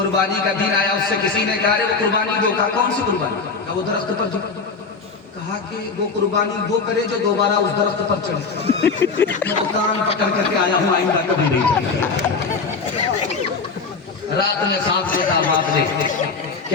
का दिन आया, उससे किसी ने कहा वो कुर्बानी दो। कहा कौन सी कुर्बानी? कहा वो दरख्त पर जो। कहा कि वो कुर्बानी वो करे जो दोबारा उस दरख्त पर चढ़े। मैं तो कान पकड़ करके आया हूँ, आइंदा कभी नहीं चढ़े। रात में सांस लेता बाप ने कि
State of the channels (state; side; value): quieter; right; 4.7 dB